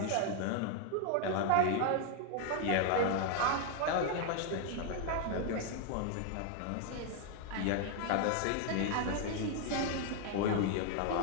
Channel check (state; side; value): different; both; correlation 0.00